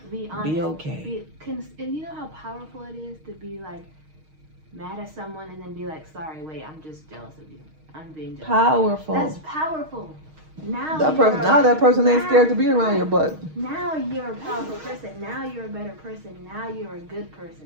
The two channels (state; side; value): late; left; 6.4 ms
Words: Be honest. Be okay. And you know how powerful it is to be like mad at someone and then be like, sorry, wait, I'm just jealous of you. I'm being jealous. Powerful. That's powerful. Now That you're person. Now that person ain't now- scared to be around your butt. Now you're a powerful person. Now you're a better person. Now you're a good